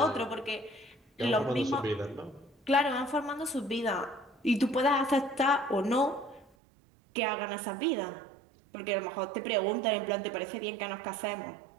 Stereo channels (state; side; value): drops out; left; at 6.5 s